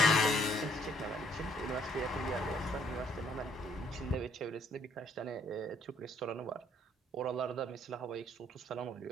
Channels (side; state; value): both; normal; correlation 0.65